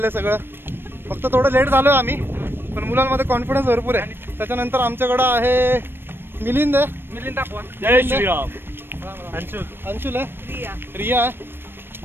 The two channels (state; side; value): late; left; 0.10 ms